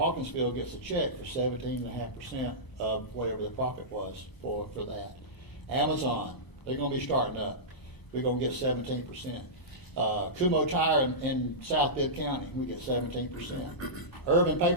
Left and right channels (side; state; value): right; late; 1.0 ms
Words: gets a check for 17.5% of whatever the profit was for that. Amazon, they're going to be starting up. We're going to get 17%. Kumo Tire in South Bibb County, we get 17%. Urban